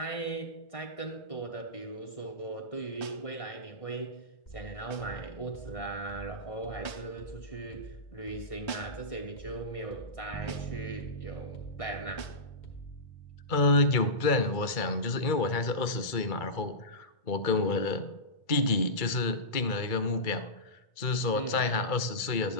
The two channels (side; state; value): right; late; 2.2 ms